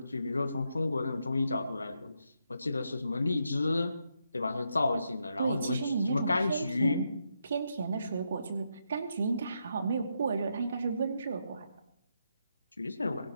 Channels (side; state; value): both; inverted; correlation -0.81